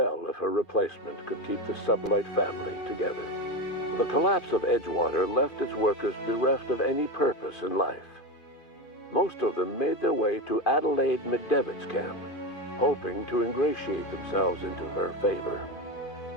if her replacement could keep the sublight family together. The collapse of Edgewater left its workers bereft of any purpose in life. Most of them made their way to Adelaide McDevitt's camp, hoping to ingratiate themselves into her favor.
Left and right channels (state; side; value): late; right; 2.5 ms